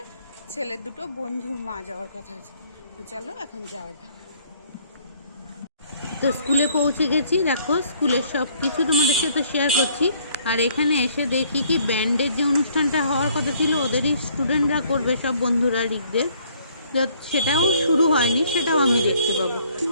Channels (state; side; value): inverted; both; correlation -0.63